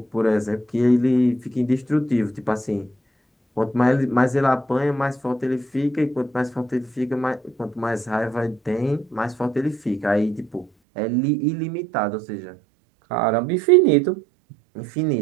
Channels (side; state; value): left; drops out; at 10.7 s